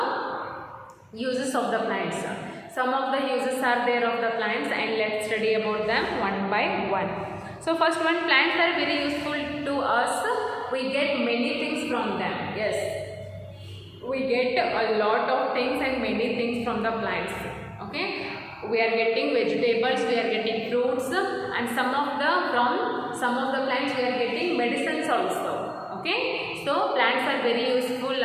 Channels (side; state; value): both; identical; correlation 1.00